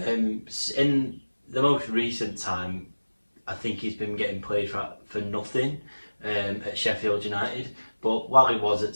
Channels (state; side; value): inverted; both; correlation -1.00